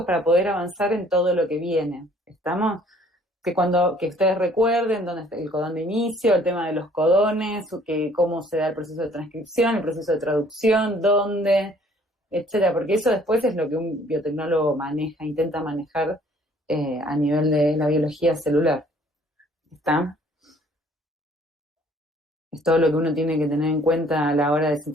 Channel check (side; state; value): both; normal; correlation 0.58